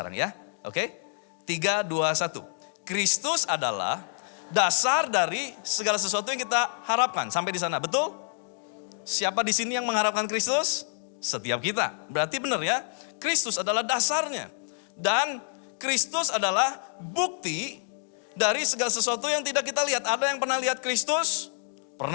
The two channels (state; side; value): silent; right; digital silence